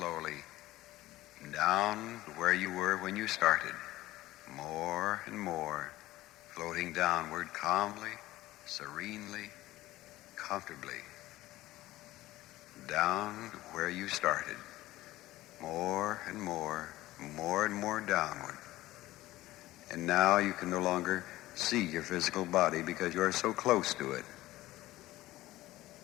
down to where you were when you started. More and more, floating downward calmly, serenely, comfortably. Down to where you started. More and more, more and more downward. And now you can no longer see your physical body because you are so close to it.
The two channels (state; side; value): quieter; right; 16.8 dB